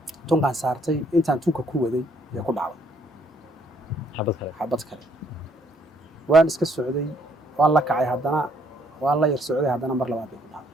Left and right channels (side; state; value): both; normal; correlation 0.67